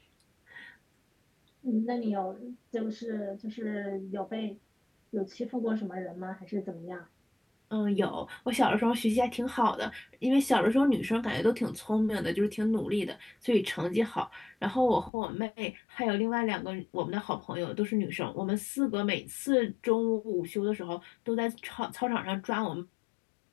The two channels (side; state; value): right; drops out; at 15.1 s